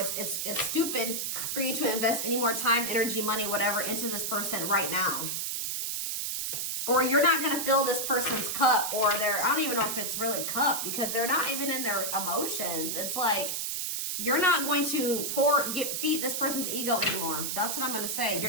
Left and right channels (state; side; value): noise; right; hiss, 2 dB below the sound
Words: stupid for you to invest any more time, energy, money, whatever, into this person right now. Or you're not going to fill this person's cup, or I don't even know if it's really cup, because they're not even in their emotions. It's like, you're not going to feed this person's ego anymore. That's what I'm going to say.